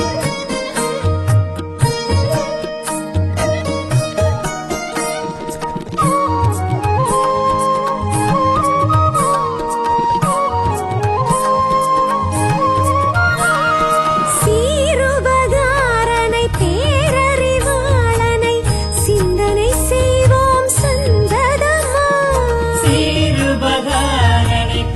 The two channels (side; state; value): both; identical; correlation 1.00